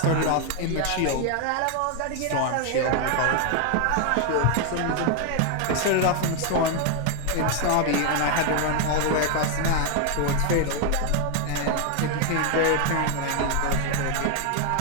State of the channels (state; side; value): different; both; correlation 0.01